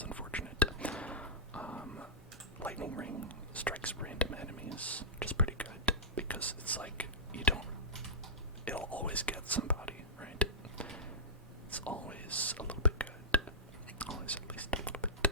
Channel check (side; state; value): both; normal; correlation -0.17